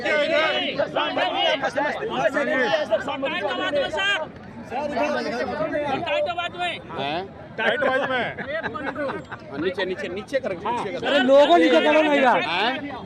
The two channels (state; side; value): identical; both; correlation 1.00